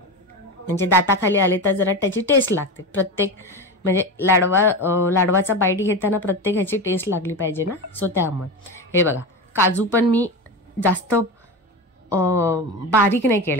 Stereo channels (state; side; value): normal; both; correlation 0.22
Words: म्हणजे दाताखाली आले तर जरा त्याची टेस्ट लागते. प्रत्येक म्हणजे लाडवाचा बाईट घेताना प्रत्येक ह्याची टेस्ट लागली पाहिजे ना. सो त्यामुळे हे बघा काजू पण मी जास्त बारीक नाही